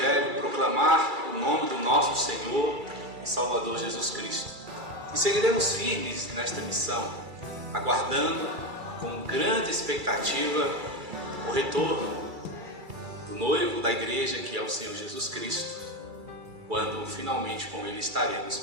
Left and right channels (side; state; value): left; late; 2.3 ms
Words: proclamar o nome do nosso Senhor e Salvador Jesus Cristo. E seguiremos firmes nesta missão, aguardando com grande expectativa o retorno do noivo da igreja, que é o Senhor Jesus Cristo, quando finalmente com Ele estaremos